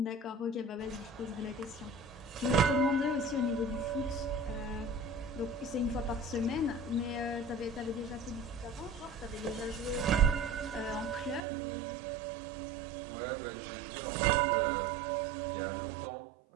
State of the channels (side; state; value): left; drops out; at 11.4 s